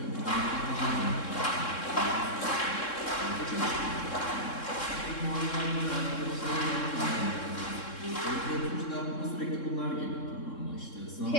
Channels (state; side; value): late; right; 3.7 ms